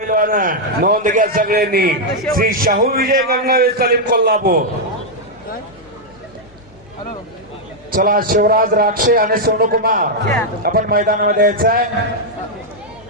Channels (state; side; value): normal; both; correlation -0.03